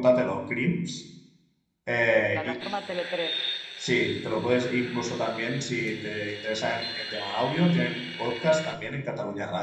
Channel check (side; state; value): both; identical; correlation 1.00